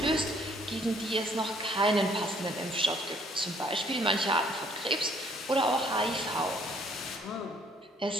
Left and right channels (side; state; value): both; normal; correlation 0.62